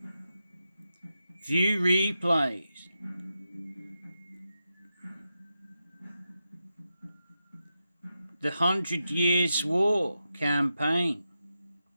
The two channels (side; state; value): both; inverted; correlation -0.89